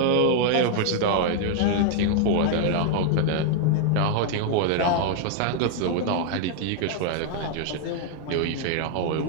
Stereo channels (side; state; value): both; different; correlation 0.00